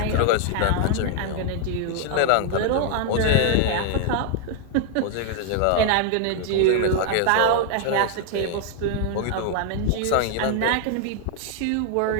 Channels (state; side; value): different; both; correlation 0.00